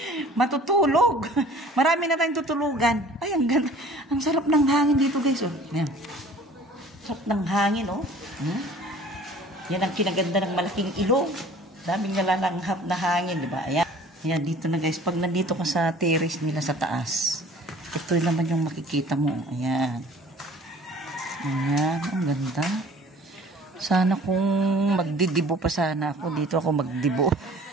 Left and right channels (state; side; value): normal; both; correlation 0.49